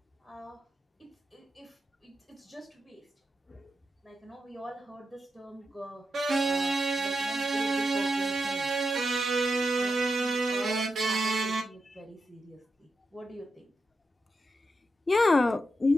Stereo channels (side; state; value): both; normal; correlation 0.87